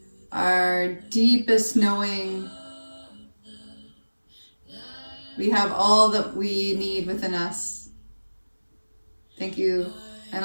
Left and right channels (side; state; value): both; inverted; correlation -1.00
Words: our deepest knowing. We have all that we need within us. Thank you,